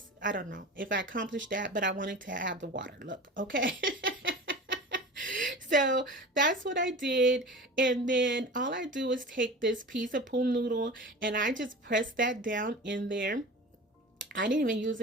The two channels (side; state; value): both; normal; correlation 0.34